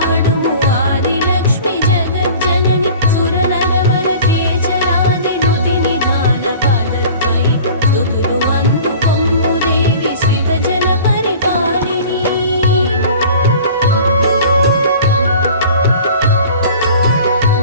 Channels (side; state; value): both; inverted; correlation -0.43